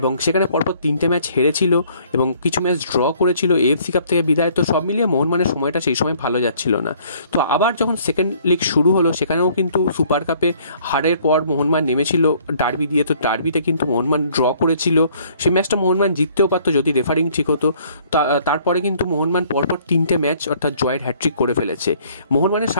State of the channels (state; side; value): inverted; both; correlation -0.59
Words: সেখানে পরপর 3টে ম্যাচ হেরেছিল এবং কিছু ম্যাচ ড্র করেছিল এএফসি কাপ থেকে বিদায়। তো সব মিলিয়ে মোহনবাগানের সময়টা সেই সময় ভালো যাচ্ছিল না। তো আবার যখন সেকেন্ড লিগ শুরু হলো সেখানেও কিন্তু সুপার কাপে হারের পর মোহনবাগান নেমেছিল ডার্বি দিয়ে। তো ডার্বিতে কিন্তু মোহনবাগান ড্র করেছিল, সেই ম্যাচটা মোহনবাগান জিততেও পারতো যদি রেফারিং ঠিক হতো। তারপরে কিন্তু মোহনবাগান পরপর 3টে ম্যাচ অর্থাৎ জয়ের হ্যাট্রিক করে ফেলেছে। মোহনবাগানের